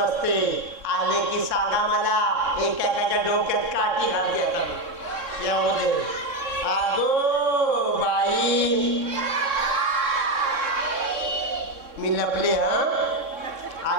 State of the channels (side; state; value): left; late; 3.6 ms